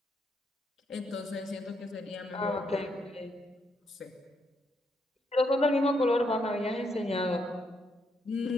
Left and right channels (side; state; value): both; normal; correlation 0.76